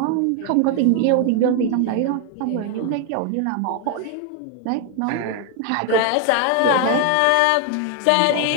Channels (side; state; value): both; different; correlation 0.01